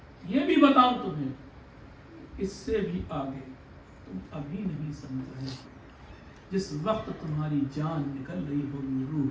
یہ بھی بتاؤں تمہیں، اس سے بھی آگے تم ابھی نہیں سمجھ رہے، جس وقت تمہاری جان نکل رہی ہوگی، روح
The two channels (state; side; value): identical; both; correlation 1.00